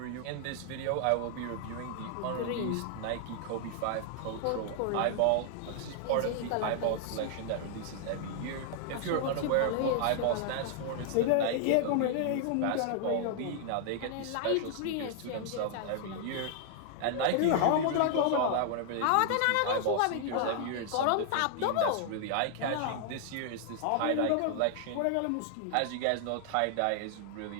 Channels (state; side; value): different; both; correlation 0.00